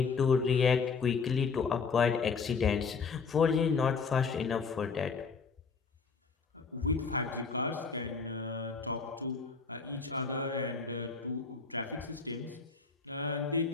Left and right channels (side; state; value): right; quieter; 5.1 dB